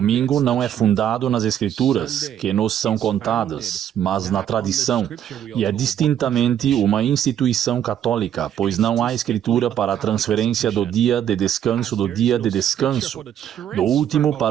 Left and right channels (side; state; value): left; quieter; 10.2 dB